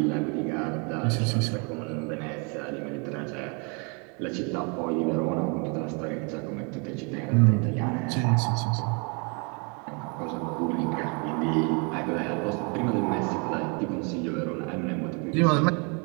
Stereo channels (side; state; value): left; quieter; 34.0 dB